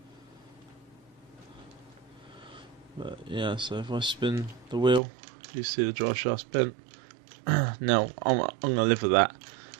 But yeah, so if I spin the wheel, you see the drive shaft's bent. Now I'm gonna live with that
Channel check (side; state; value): left; drops out; at 5.0 s